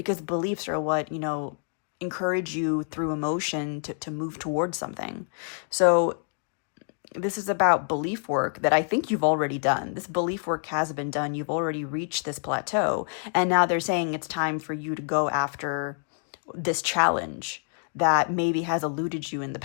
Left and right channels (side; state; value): right; silent; 60 dB below the other